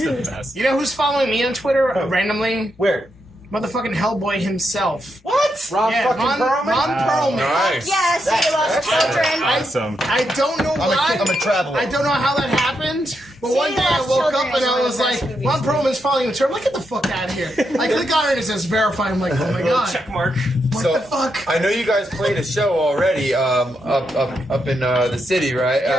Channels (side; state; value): both; normal; correlation 0.82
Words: the best. You know who's following me on Twitter randomly? Where? Motherfucking Hellboy himself. What? Ron fucking Perlman? Ron Perlman. Nice. Yes, he loves children. Awesome. I don't know why. I'm a traveler. I don't know how that happened. But one day I Lost woke Children up and is I one of was the like, best movies. Ron Perlman's following the term. Like, get the fuck out of here. I click on it and it says verify. I'm like, oh my god. Check mark. What So the fuck? I know you guys played a show already up in the city, right?